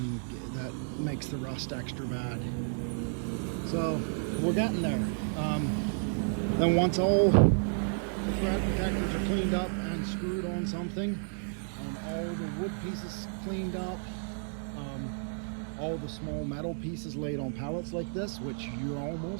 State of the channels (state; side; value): silent; left; digital silence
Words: that makes the rust extra bad. So we're getting there. Then once all the thread protectors are cleaned up and screwed on something, all the wood pieces cleaned up, all the small metal pieces laid on pallets like this, which you're